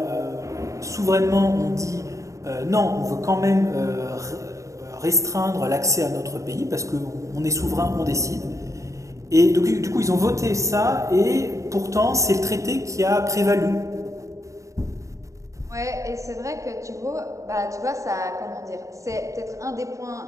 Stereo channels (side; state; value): left; late; 0.15 ms